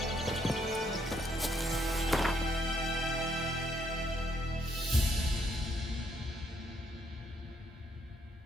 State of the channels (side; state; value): both; normal; correlation 0.72